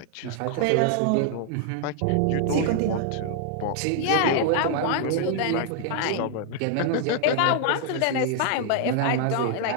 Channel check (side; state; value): both; different; correlation 0.00